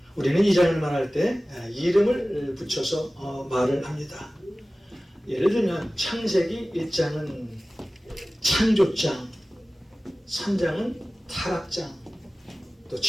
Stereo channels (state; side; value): normal; both; correlation 0.97